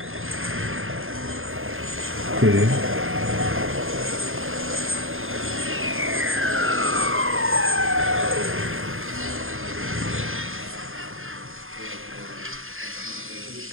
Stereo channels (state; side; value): late; left; 0.60 ms